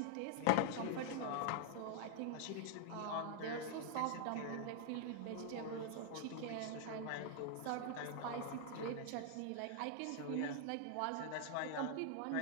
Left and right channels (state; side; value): different; both; correlation 0.00